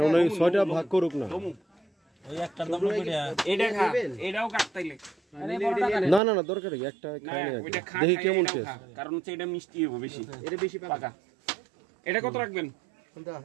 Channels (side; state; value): left; drops out; at 6.2 s